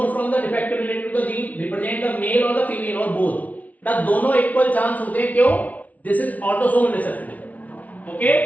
from the defect related to the gene, represent the male or the female or both? ना दोनों इक्वल चांस होते हैं, क्यों? This is autosomal recessive, okay?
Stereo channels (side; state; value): right; late; 0.071 ms